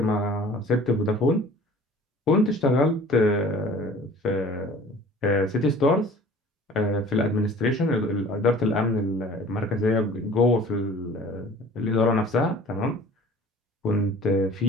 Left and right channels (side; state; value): both; normal; correlation 0.47